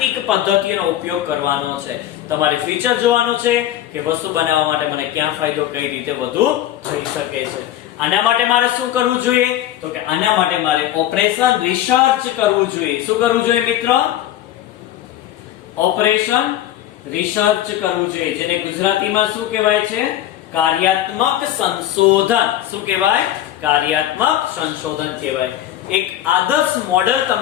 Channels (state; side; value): quieter; right; 12.6 dB